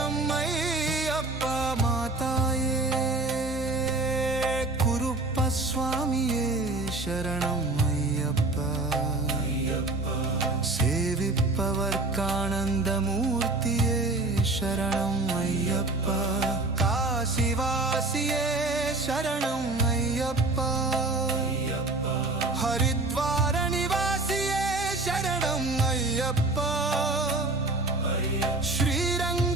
ಅಯ್ಯಪ್ಪ ಮಾತಾಯೇ ಕುರುಪ್ಪ ಸ್ವಾಮಿಯೇ ಶರಣಂ ಅಯ್ಯಪ್ಪ ಸೇವಿಪ್ಪವರ್ಕಾನಂದ ಮೂರ್ತಿಯೇ ಶರಣಂ ಅಯ್ಯಪ್ಪ ಕಾಶಿವಾಸಿಯೇ ಶರಣಂ ಅಯ್ಯಪ್ಪ ಹರಿದ್ವಾರ ನಿವಾಸಿಯೇ ಶರಣಂ ಅಯ್ಯಪ್ಪ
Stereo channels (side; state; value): left; quieter; 3.0 dB